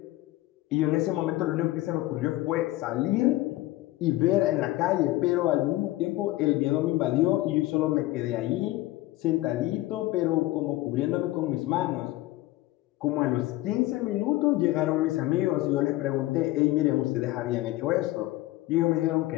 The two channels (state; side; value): quieter; right; 17.4 dB